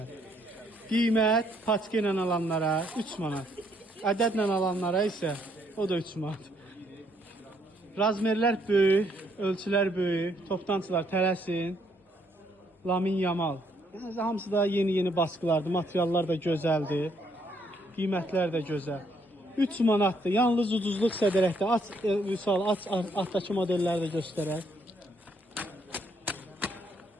Qiymət paçka ilə alanlara 3 manat. Ədədlə alanlara isə o da 3 manat. Razmerlər böyük, ölçülər böyük, toptancılar tələsin. Lamin Yamal. Yəni, hamısı da yeni baskılardır, materiallar da gözəldir. Qiymətlər də gözəl. 3 manatdır. Yalnız ucuzluq sədərəkdə. Aç, Vüsal, aç altdakı modelləri də göstərək.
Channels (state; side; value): normal; both; correlation 0.70